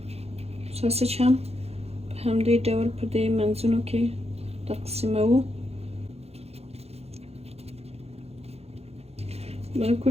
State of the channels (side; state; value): left; late; 0.30 ms